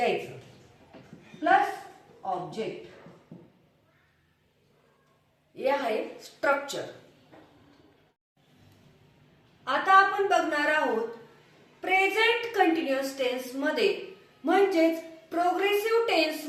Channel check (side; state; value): both; identical; correlation 1.00